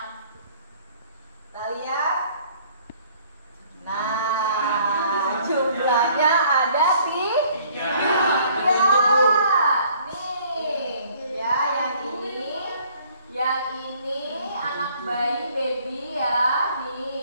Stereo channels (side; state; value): both; inverted; correlation -0.58